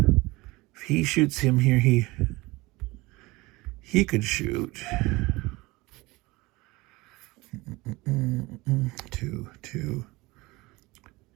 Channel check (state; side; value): quieter; left; 22.0 dB